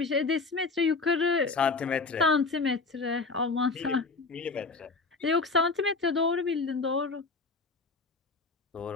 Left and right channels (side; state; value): right; quieter; 4.0 dB